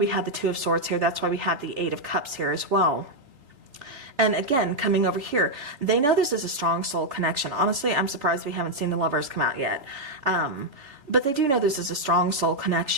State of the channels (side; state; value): left; late; 3.5 ms